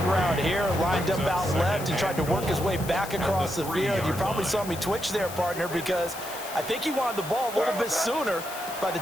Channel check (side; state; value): left; noise; hiss, 12 dB below the sound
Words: route here, lined up out left and tried to work his way back across the field. You probably saw me twitch there, partner, because I think he wanted the ball a little bit sooner. By the